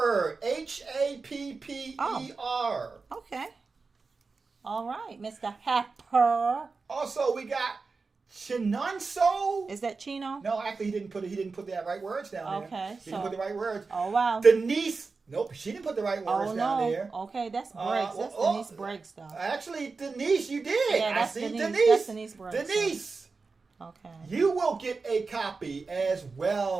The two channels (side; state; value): left; quieter; 4.3 dB